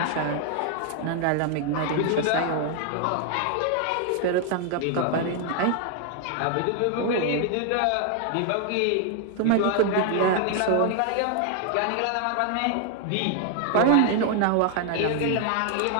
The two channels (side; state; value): both; different; correlation 0.00